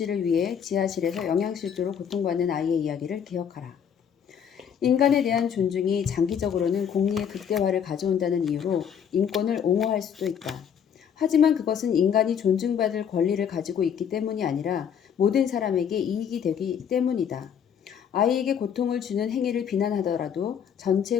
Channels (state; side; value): quieter; right; 8.0 dB